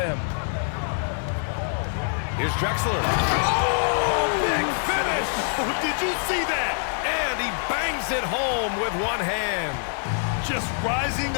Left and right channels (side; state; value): right; silent; 62 dB below the other